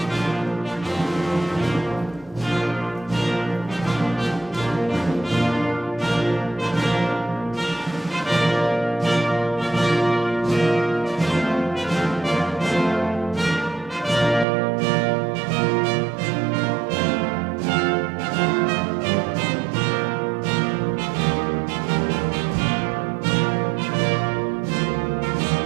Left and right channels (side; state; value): left; drops out; at 14.5 s